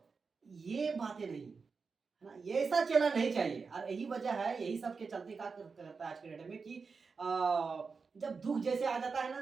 ये बातें नहीं, है ना। ये ऐसा चेला नहीं चाहिए। और यही वजह है, यही सब के चलते क्या करता है आज के डेट में कि जब दुख जैसे आ जाता है ना,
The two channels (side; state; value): left; quieter; 4.9 dB